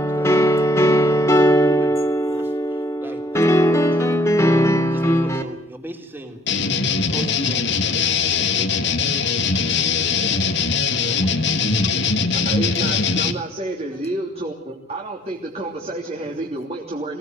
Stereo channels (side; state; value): both; normal; correlation 0.58